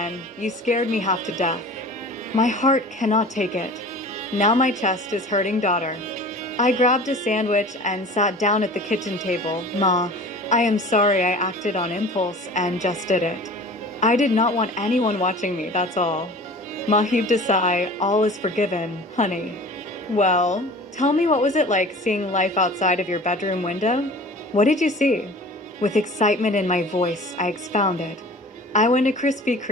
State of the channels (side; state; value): both; normal; correlation 0.42